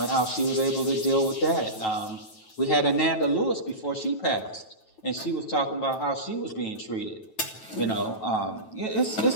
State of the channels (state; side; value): late; right; 9.2 ms